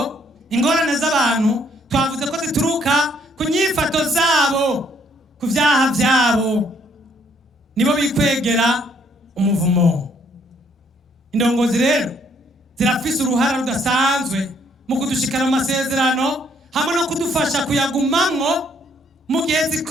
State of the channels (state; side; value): normal; both; correlation 0.67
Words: ingorane z'abantu twavuze ko zituruka ku nyifato zabo, ku byaha byabo, nibo bikwegera umuvumo. Indongozi rero zirafise uruhara rudasanzwe mu kudushikana mu masezerano, hamwe no kudufasha kuyagumamwo mu gihe